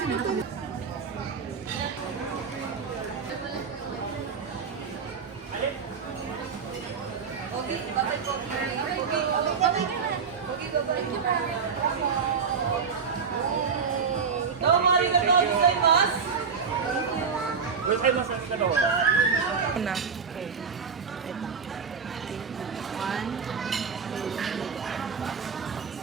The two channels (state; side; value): quieter; left; 5.9 dB